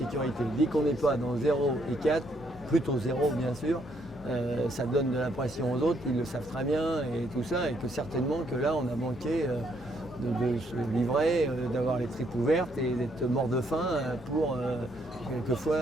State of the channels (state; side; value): normal; both; correlation 0.71